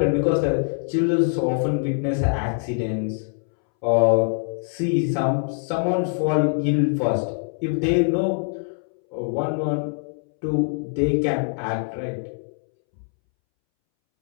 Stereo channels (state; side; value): silent; right; 63 dB below the other